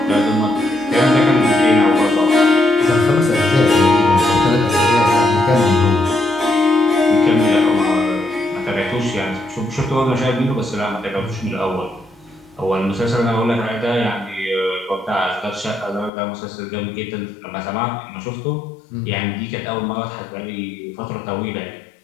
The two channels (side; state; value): right; drops out; at 16.1 s